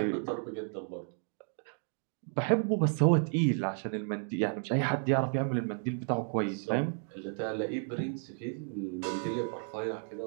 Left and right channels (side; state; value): left; silent; 56 dB below the other